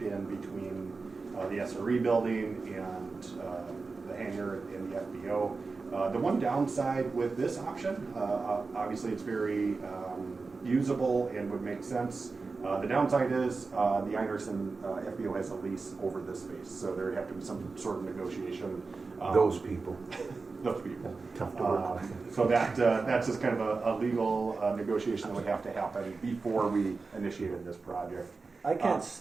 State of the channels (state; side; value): quieter; left; 4.2 dB